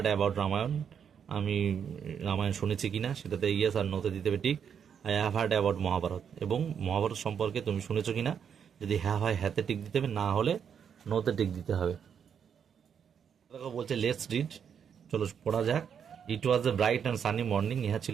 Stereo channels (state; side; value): quieter; left; 7.7 dB